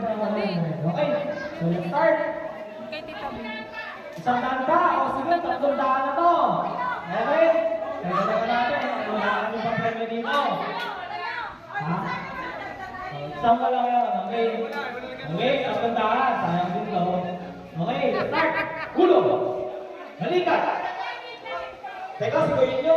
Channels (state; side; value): identical; both; correlation 1.00